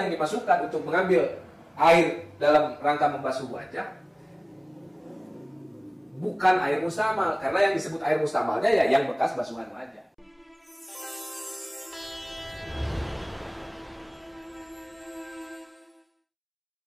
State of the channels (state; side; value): identical; both; correlation 1.00